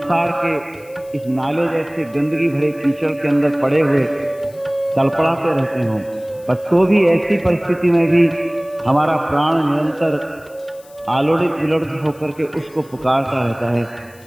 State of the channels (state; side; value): noise; left; hiss, 26 dB below the sound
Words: के इस नाले जैसे गंदगी भरे कीचड़ के अंदर पड़े हुए तड़पड़ाते रहते हों, पर तो भी ऐसी परिस्थिति में भी हमारा प्राण निरंतर आलोड़ित विलोड़ित होकर के उसको पुकारता रहता